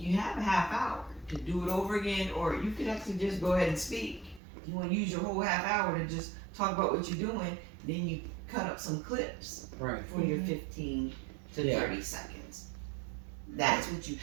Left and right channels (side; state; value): left; drops out; at 4.4 s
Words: have a half hour to do it over again, or you could actually just go ahead and speak. You want to use your whole half hour to just talk about what you're doing, then you cut up some clips Right. for your 15 to 30 seconds. That's what you